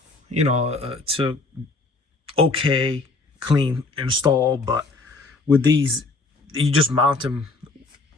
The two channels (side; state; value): right; quieter; 3.5 dB